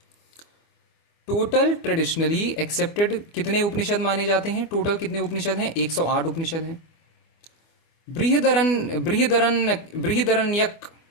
टोटल ट्रेडिशनली एक्सेप्टेड कितने उपनिषद माने जाते हैं, टोटल कितने उपनिषद हैं, 108 उपनिषद हैं। बृहदरण्यक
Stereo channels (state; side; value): late; right; 25 ms